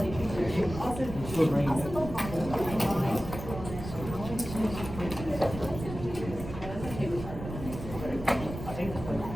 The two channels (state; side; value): noise; right; rumble, 9 dB below the sound